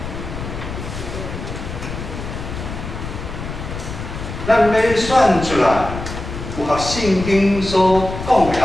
咱要选出来符合圣经所讲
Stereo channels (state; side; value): noise; left; rumble, 8 dB below the sound